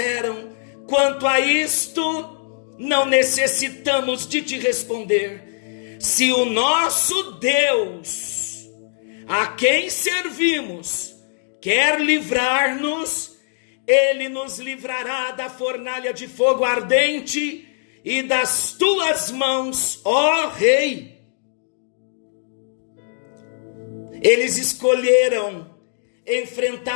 quanto a isto, não necessitamos de te responder. Se o nosso Deus, a quem servimos, quer livrar-nos, Ele nos livrará da fornalha de fogo ardente e das tuas mãos, ó rei. Eles escolheram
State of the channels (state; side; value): silent; right; digital silence